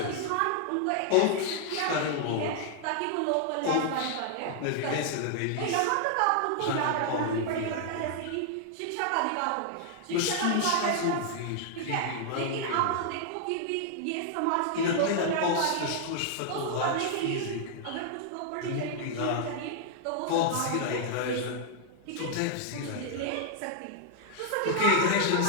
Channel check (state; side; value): different; both; correlation -0.01